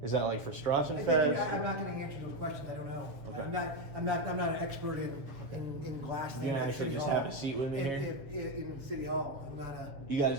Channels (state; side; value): late; left; 7.2 ms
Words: Is that like for Strassenfest? I'm not going to answer those questions. I don't know. Okay. I'm not an expert in glass things. You're gonna actually just have a seat with me here? In City Hall. I'm not a. You guys